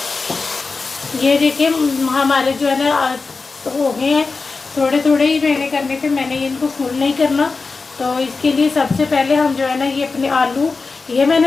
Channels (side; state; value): right; quieter; 4.2 dB